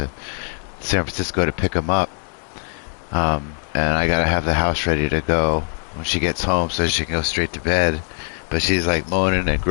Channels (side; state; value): right; silent; 55 dB below the other